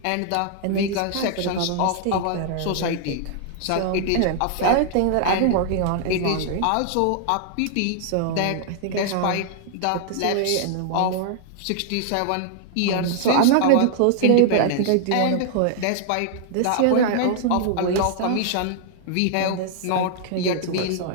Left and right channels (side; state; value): both; different; correlation -0.01